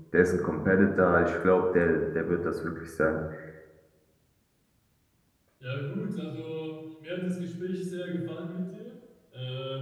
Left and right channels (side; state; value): both; identical; correlation 1.00